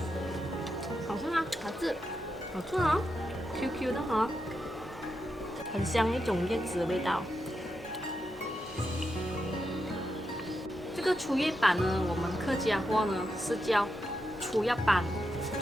好吃吗？好吃。好吃哦 ，QQ 的哈、很香一种叶子的味道。这个粗叶板呢，我们客家话呢是叫粗叶板，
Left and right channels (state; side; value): noise; right; hum, 23 dB below the sound